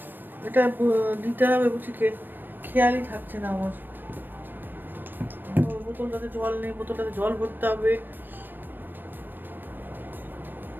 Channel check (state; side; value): late; left; 0.093 ms